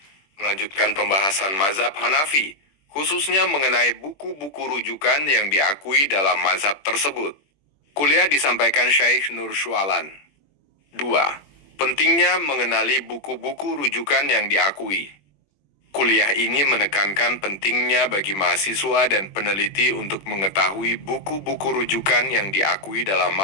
melanjutkan pembahasan mazhab Hanafi, khususnya mengenai buku-buku rujukan yang diakui dalam mazhab tersebut. Kuliah disampaikan Syekh Nur Syualan. 2. Pentingnya mengenali buku-buku rujukan yang diakui. Kuliah ini menekankan pentingnya bagi mahasiswa dan peneliti untuk mengetahui buku-buku rujukan yang diakui dalam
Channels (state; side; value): late; right; 21 ms